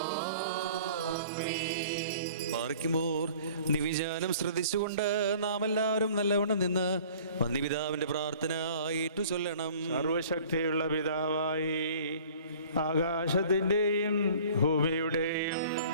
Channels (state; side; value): inverted; both; correlation -0.50